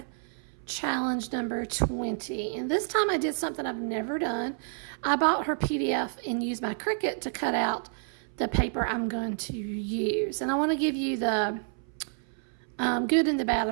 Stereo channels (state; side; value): silent; left; 58 dB below the other